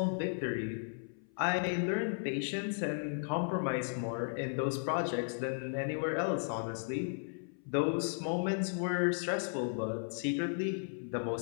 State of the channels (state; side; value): silent; right; 54 dB below the other